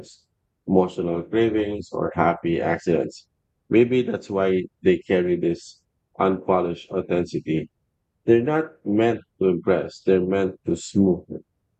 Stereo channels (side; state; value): both; identical; correlation 1.00